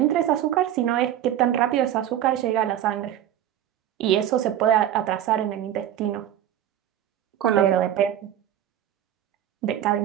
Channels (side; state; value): left; quieter; 11.2 dB